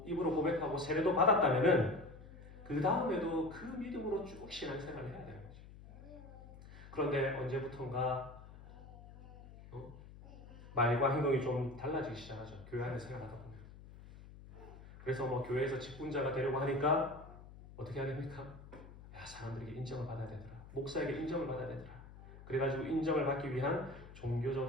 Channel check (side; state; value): left; noise; hum, 17 dB below the sound